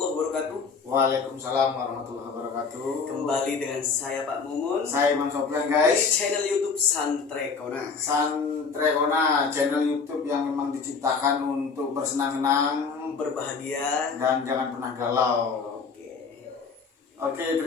wabarakatuh. Waalaikumsalam warahmatullahi wabarakatuh. Kembali dengan saya Pak Mumun. Saya Imam Sofyan Di guys. channel YouTube Santrekona. Santrekona, channel YouTube yang memang diciptakan untuk bersenang-senang, Berbahagia. dan jangan pernah galau. Oke,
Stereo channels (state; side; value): quieter; right; 5.2 dB